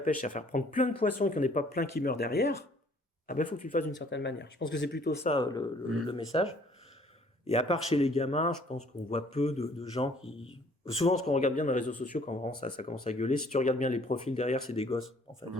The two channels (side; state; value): both; normal; correlation 0.59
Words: c'est à faire prendre plein de poissons et qu'il n'y en ait pas plein qui meurent derrière, il faut que tu le fasses d'une certaine manière. Je pense que c'est plutôt ça le message. Et à part chez les gamins, je pense qu'on voit peu de gens qui... Souvent, ce qu'on regarde bien dans les réseaux sociaux, quand vraiment ça commence à gueuler, si tu regardes bien les profils derrière, c'est des gosses, en fait.